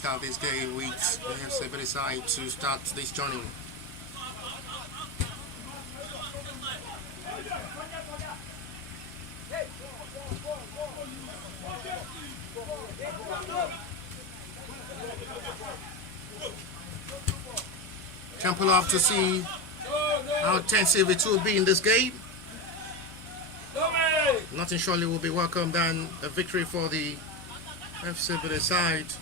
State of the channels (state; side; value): normal; both; correlation 0.18